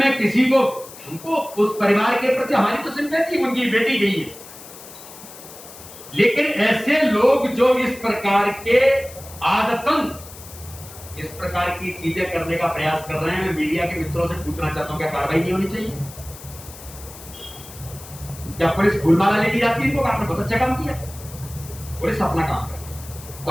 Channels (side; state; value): left; noise; hiss, 17 dB below the sound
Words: किसी को, हमको उस परिवार के प्रति हमारी तो सिंपैथी, उनकी बेटी गई है, लेकिन ऐसे लोग जो इस प्रकार के आदतन इस प्रकार की चीजें करने का प्रयास कर रहे हैं, मैं मीडिया के मित्रों से पूछना चाहता हूं क्या कार्रवाई नहीं होनी चाहिए? क्या पुलिस फूलमाला लेके जाती है इनको? आपने बहुत अच्छा काम किया, पुलिस अपना काम करे।